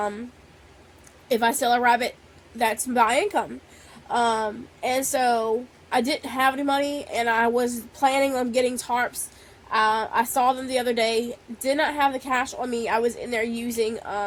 If I sell a rabbit, that's my income. And so I didn't have any money, and I was planning on getting tarps. I saw them the other day. Did not have the cash on me. I was in there using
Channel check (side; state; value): both; identical; correlation 1.00